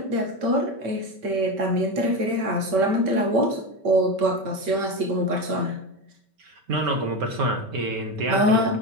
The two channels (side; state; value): left; late; 5.2 ms